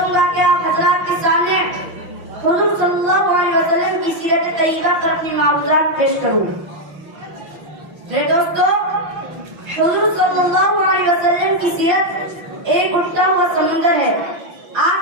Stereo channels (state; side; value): late; left; 6.1 ms